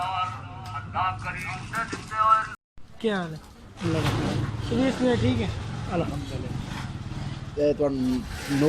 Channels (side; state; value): both; identical; correlation 1.00